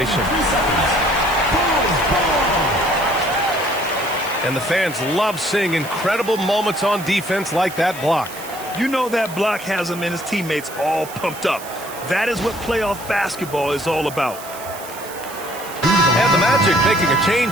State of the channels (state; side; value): noise; right; hiss, 15 dB below the sound